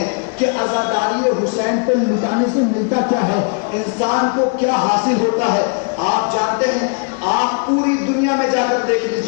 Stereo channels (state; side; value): quieter; right; 39.6 dB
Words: کہ عزاداری حسین پہ لٹانے سے ملتا کیا ہے, انسان کو کیا حاصل ہوتا ہے. آپ جانتے ہیں, آپ پوری دنیا میں جا کر دیکھ